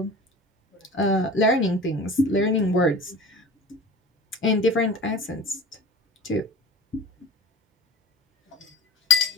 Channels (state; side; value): normal; both; correlation 0.36